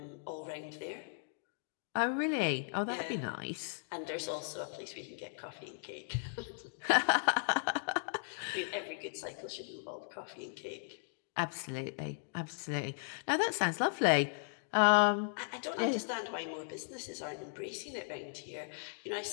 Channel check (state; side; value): silent; right; digital silence